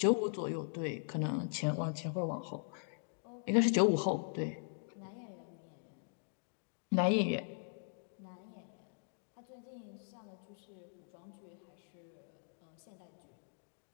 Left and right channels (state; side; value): silent; right; digital silence